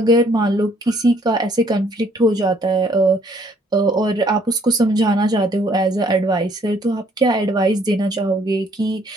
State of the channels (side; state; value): both; normal; correlation 0.63